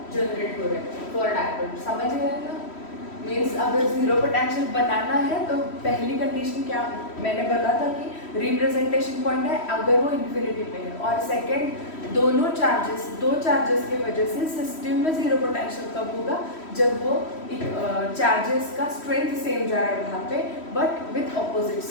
जनरेट हो रहा है फॉर डायपोल, समझ गए ना। मीन्स अगर जीरो पोटेंशियल बनाना है तो पहली कंडीशन क्या मैंने बोला था कि रिप्रेजेंटेशन पॉइंट है अगर वो इन्फिनिटी पे है, और सेकंड दो चार्जेस के वजह से सिस्टम में जीरो पोटेंशियल कब होगा, जब वो चार्जेस का स्ट्रेंथ सेम जा रहा है वहाँ पे बट विथ ऑपोजिट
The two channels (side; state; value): right; late; 3.1 ms